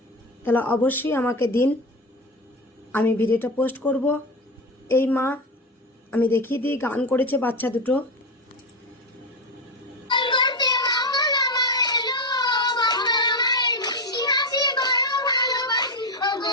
তাহলে অবশ্যই আমাকে দিন, আমি ভিডিওটা পোস্ট করব। এই মা আমি দেখিয়ে দিই, গান করেছে বাচ্চা দুটো।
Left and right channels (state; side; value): normal; both; correlation 0.16